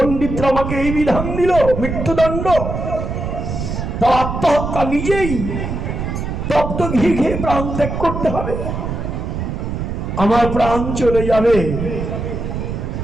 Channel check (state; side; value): noise; right; rumble, 4 dB below the sound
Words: আমাকে এই বিধান দিল, মৃত্যুদণ্ড। তা আত্মহত্যা, নিজেই তপ্ত ঘি খেয়ে প্রাণ ত্যাগ করতে হবে। আমার প্রাণ চলে যাবে।